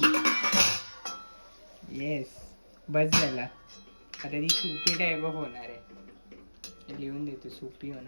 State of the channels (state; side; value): inverted; both; correlation -1.00